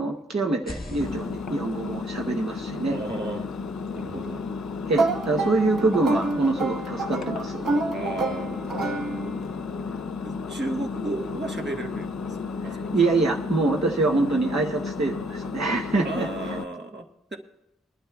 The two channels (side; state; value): both; normal; correlation 0.66